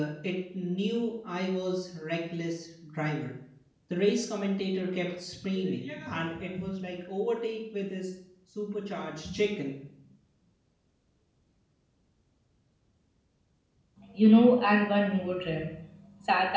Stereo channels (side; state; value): both; identical; correlation 1.00